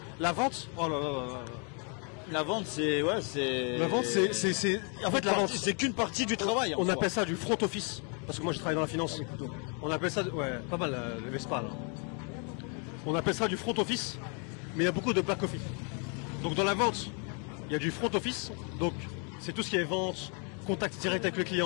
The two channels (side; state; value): right; quieter; 37.6 dB